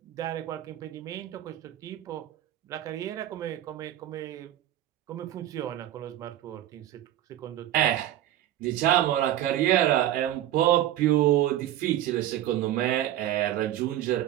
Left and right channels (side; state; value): left; quieter; 12.9 dB